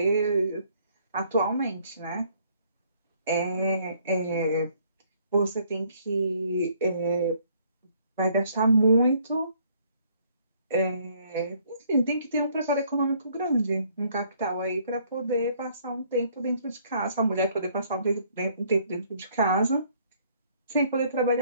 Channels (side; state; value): both; inverted; correlation -0.64